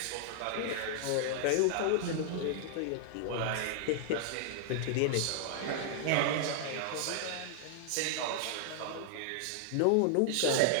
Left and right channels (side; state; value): both; different; correlation -0.01